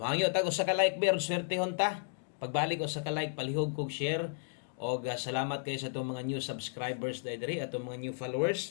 tag usa ka like ber swertehon ta. Pagbalik usa ka like palihog kog share og salamat kayo sa itong mga new subscribers diri atong mga new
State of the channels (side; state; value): right; silent; digital silence